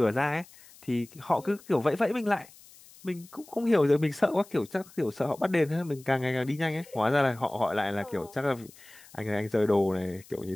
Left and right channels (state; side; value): noise; left; hiss, 23 dB below the sound